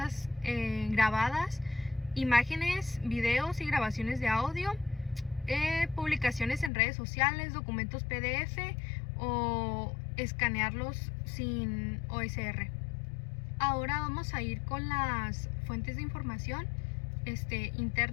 grabadas, imágenes, videos y grabaciones de audio, publicaciones en redes sociales, documentos PDF o escanearlos sin OSR. Ahora vamos a ir con las fuentes de información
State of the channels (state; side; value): drops out; right; at 6.7 s